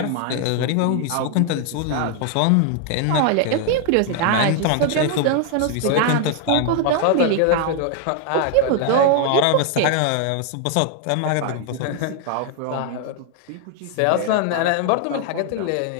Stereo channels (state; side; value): different; both; correlation 0.00